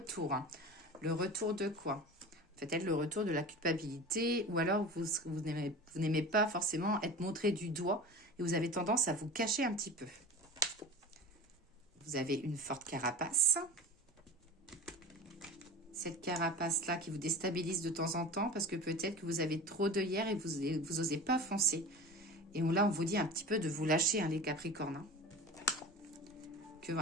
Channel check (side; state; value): both; normal; correlation 0.34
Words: Hein. Le retour de quoi? Peut-être le retour de la culpabilité ou alors vous n'aimez pas forcément être montré du doigt et vous avez tendance à vous cacher un petit peu. Vous avez une forte carapace. Cette carapace-là qui vous déstabilise de temps en temps parce que peut-être que vous avez trop d'œillères et vous n'osez pas foncer. Et là, on vous dit un petit peu de vous lâcher, hein, les Capricornes. Hein. Que